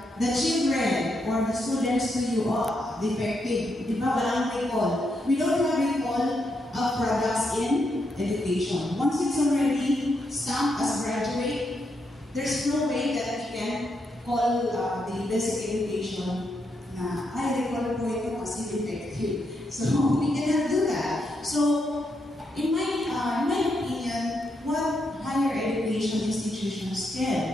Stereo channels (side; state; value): both; normal; correlation 0.81